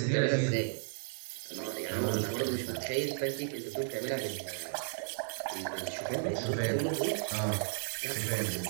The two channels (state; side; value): silent; left; digital silence